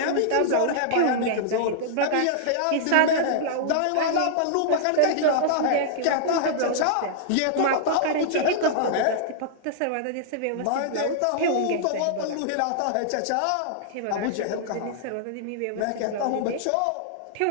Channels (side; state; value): both; different; correlation -0.01